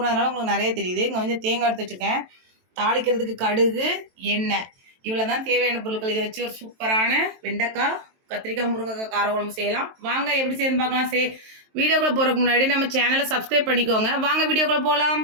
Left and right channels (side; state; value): left; late; 23 ms